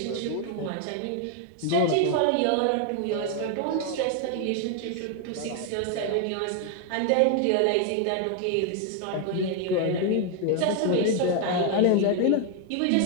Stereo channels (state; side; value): different; both; correlation 0.00